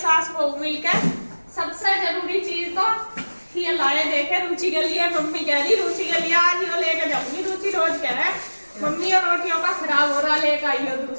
बहू मिलकर। सबसे जरूरी चीज तो ये लाए देखे रुचि के लिए। मम्मी कह रही रुचि के लिए आज यो लेके जाऊंगी। रुचि रोज कह रहा है मम्मी और रोटियों का खराब हो रहा, लेकर आई हो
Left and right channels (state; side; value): inverted; both; correlation -1.00